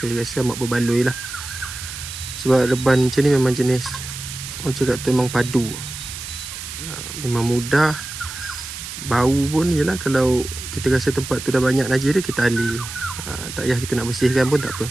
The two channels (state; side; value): noise; right; hiss, 9 dB below the sound